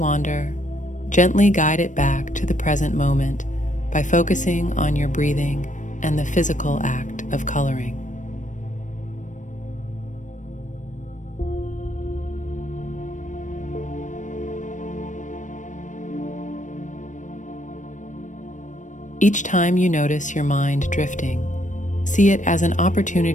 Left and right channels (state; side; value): late; right; 0.37 ms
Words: gently guide it back to the present moment by focusing on your breathing and the physical act of coloring. Each time you notice your mind drifting, see it as an